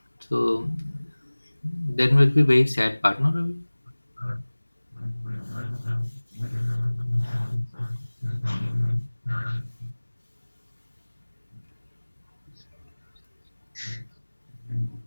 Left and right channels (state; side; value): inverted; both; correlation -1.00